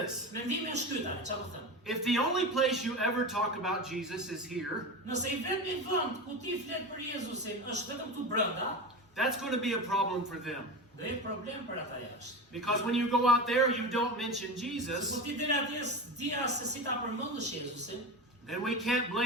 Mendimi është ky tani, çfarë do them? if the only place you ever talk about Jesus is here, Nëse I vetmi vend ku ti flet për Jezusin është vetëm këtu brenda, that's going to be a problem for them. do jetë problem për ata jashtë. Because when you go out there, you don't mention Kur Jesus, ti deri atje dia se si ta përmendësh Jezusin, then we can't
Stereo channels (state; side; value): normal; both; correlation 0.25